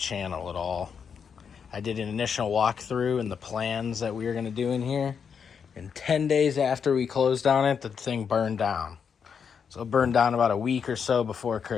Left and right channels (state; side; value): quieter; right; 6.7 dB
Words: at all. I did an initial walkthrough and the plans that we were going to do in here. And 10 days after we closed on it, the thing burned down. So it burned down about a week or so before